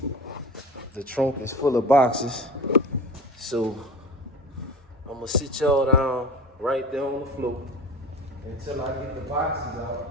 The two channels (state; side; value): normal; both; correlation 0.35